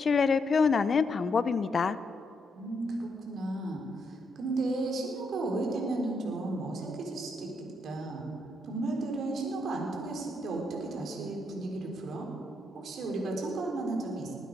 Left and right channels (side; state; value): both; normal; correlation 0.78